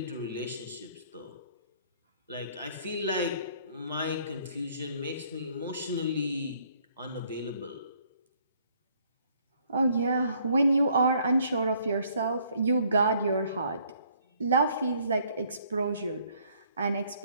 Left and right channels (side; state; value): both; inverted; correlation -0.64